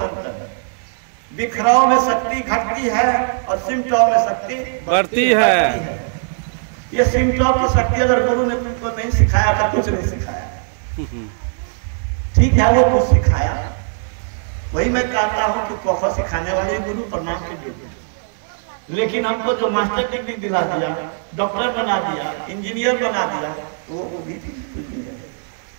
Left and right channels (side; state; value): left; silent; 66 dB below the other